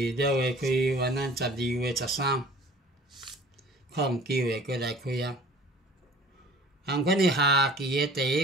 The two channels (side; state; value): both; normal; correlation 0.47